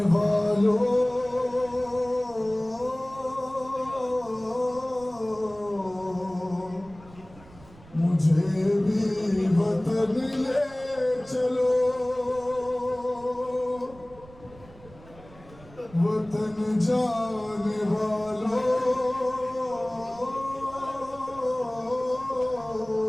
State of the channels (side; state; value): right; noise; rumble, 22 dB below the sound